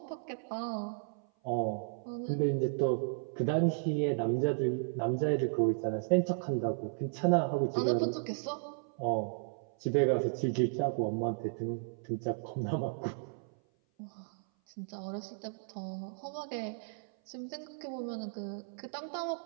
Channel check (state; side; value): silent; left; 55 dB below the other